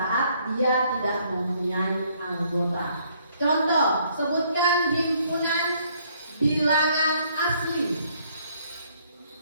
dia tidak mempunyai anggota. Contoh, sebutkan himpunan bilangan asli.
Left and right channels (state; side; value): inverted; both; correlation -0.66